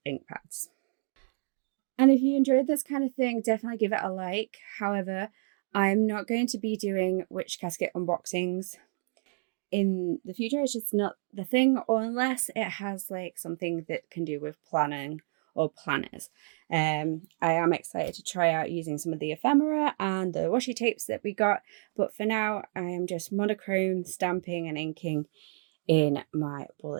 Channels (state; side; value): silent; left; digital silence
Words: ink pads. And if you enjoyed this kind of thing, definitely give it a like. However, I'm not going to be doing Witch Casket unboxings in the future. It's just not the thing, or unless it has like something that can do with planning or planners. I am excited to try out using some of the ephemera and the washi tapes that we got, but for now I am just monochrome stamping and inking in my